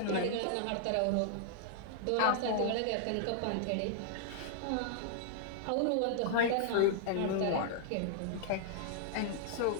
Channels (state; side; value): different; both; correlation -0.01